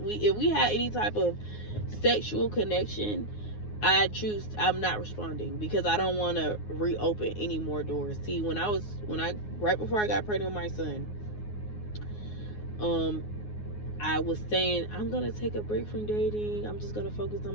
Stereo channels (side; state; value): right; late; 9.5 ms